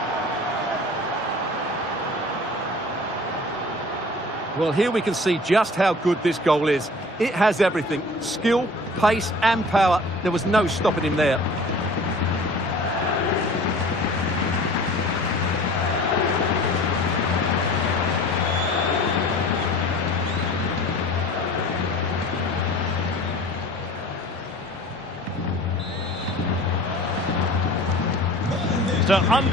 Well, here we can see just how good this goal is. It has everything. Skill, pace and power. There was no stopping him there. So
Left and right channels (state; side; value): normal; both; correlation 0.44